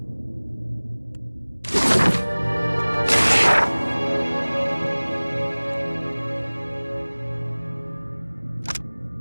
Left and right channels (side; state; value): both; inverted; correlation -1.00